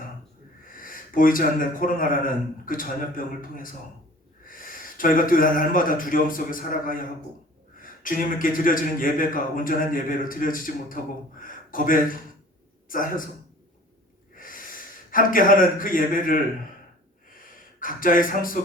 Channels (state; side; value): normal; both; correlation 0.46